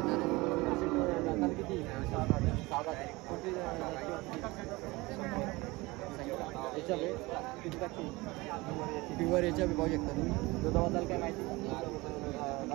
आहे. दाताला किती? 7 आहे. कोणती याच्या किती टाकते प्युअर याच्या पाहू शकता तुम्ही. दुधाबद्दल काय माहिती?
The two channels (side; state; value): left; quieter; 22.3 dB